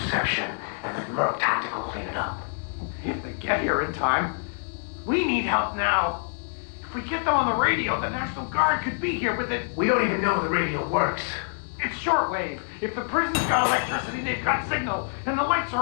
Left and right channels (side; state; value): right; silent; digital silence